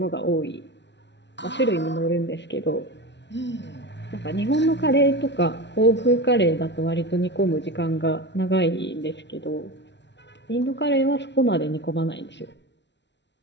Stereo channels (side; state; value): right; late; 0.51 ms